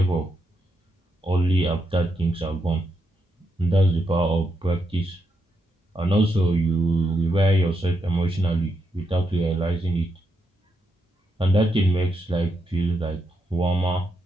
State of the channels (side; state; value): both; normal; correlation 0.81